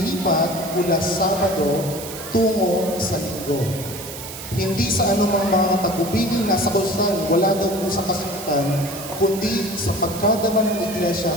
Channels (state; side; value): noise; right; hiss, 11 dB below the sound